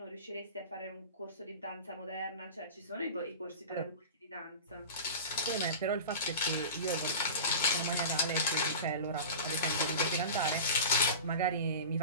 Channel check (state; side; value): inverted; both; correlation -0.32